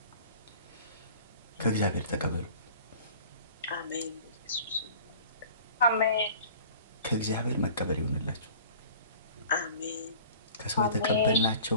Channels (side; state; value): both; inverted; correlation -0.45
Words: ከእግዚአብሔር ተቀበሉ። አሜን አሜን። ከእግዚአብሔር መቀበል ይሆንላችሁ። አሜን። ከሰው